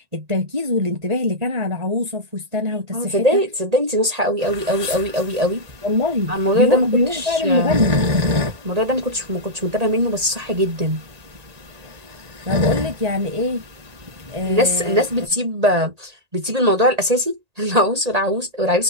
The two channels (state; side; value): late; left; 1.9 ms